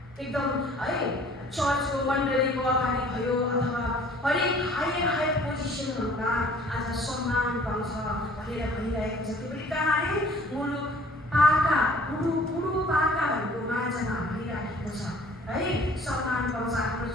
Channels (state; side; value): normal; both; correlation 0.53